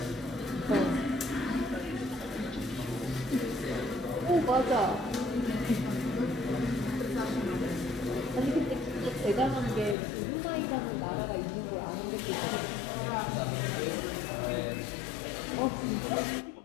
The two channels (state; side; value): drops out; right; at 10.0 s